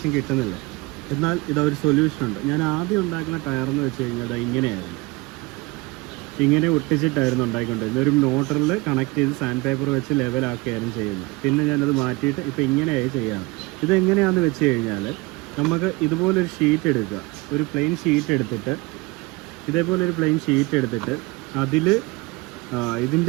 കിട്ടുന്നില്ല, എന്നാൽ ഇതൊരു സൊല്യൂഷൻ ഉണ്ട്. ഞാൻ ആദ്യം ഉണ്ടാക്കുന്ന ടയറെന്ന് വെച്ച് കഴിഞ്ഞാൽ അത് ഇങ്ങനെയായിരുന്നു. ഇങ്ങനെ ഒട്ടിച്ചിട്ടായിരുന്നു ഉണ്ടാക്കിക്കൊണ്ടിരുന്നത്. ഒരു മോട്ടറിൽ കണക്ട് ചെയ്ത് സാൻഡ് പേപ്പർ വെച്ച് ലെവലാക്കുകയായിരുന്നു ചെയ്യുന്നത്. പിന്നെ ഞാനത് മാറ്റിയിട്ട് ഇപ്പോൾ ഇങ്ങനെയായി ചെയ്യാറ്. ഇതെങ്ങനെയാണെന്ന് വെച്ച് കഴിഞ്ഞാൽ, നമുക്ക് ഇതുപോലൊരു ഷീറ്റ് എടുക്കുക, ഒരു പ്ലെയിൻ ഷീറ്റ് എടുത്തിട്ട്, ഇതേപോലൊരു പ്ലെയിൻ ഷീറ്റ് എടുത്തിട്ട് അതിൽ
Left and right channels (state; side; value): quieter; left; 24.2 dB